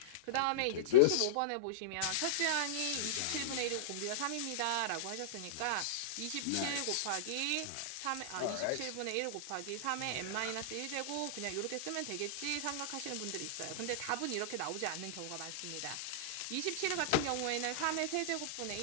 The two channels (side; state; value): both; different; correlation -0.02